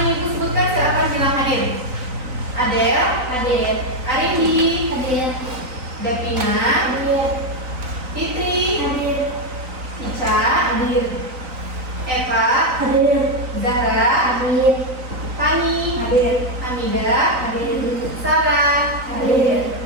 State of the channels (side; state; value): left; late; 3.9 ms